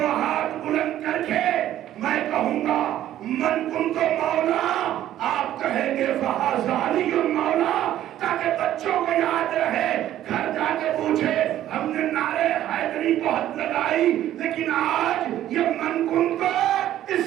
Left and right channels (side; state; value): left; quieter; 12.5 dB